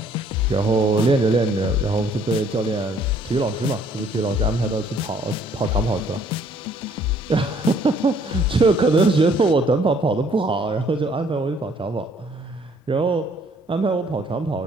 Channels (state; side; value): normal; both; correlation 0.61